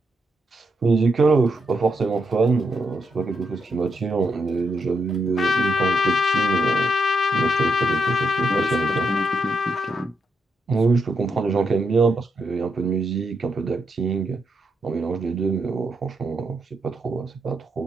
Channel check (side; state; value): both; normal; correlation 0.81